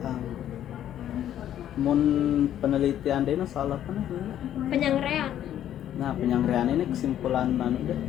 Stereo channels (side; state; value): right; quieter; 11.1 dB